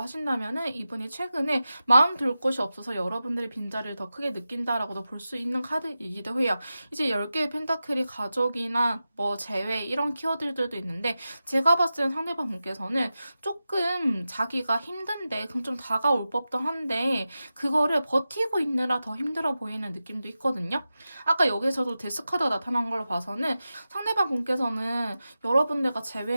하신다면은 이분이 최근에 마음 둘 곳이 없어서 여러분들의 빈자리를 더 크게 느낀다라고도 볼 수 있는 카드이기도 해요. 이제 10개의 펜타클이 가족이나 뭐 재회 이런 키워드들도 있는데 제가 봤을 때 상대방 분께서는 조금 자기가 힘든데 그럼 좀 다가올 법도 한데 그거를 버티고 있느라 더 힘들어 보이는 느낌도 있거든요. 아까 여기서도 데스카드가 나타난 걸로 봐서는 상대방 분께서는 여러분들과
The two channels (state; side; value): inverted; both; correlation -0.93